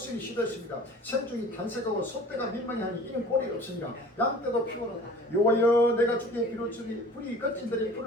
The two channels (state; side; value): normal; both; correlation 0.45